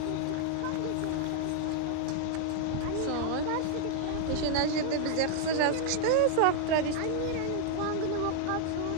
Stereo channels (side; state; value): both; different; correlation 0.00